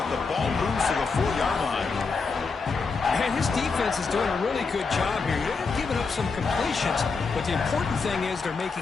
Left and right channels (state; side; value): quieter; right; 4.6 dB